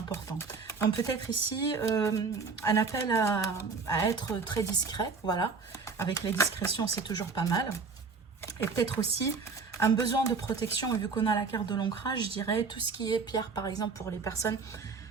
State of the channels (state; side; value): quieter; left; 4.8 dB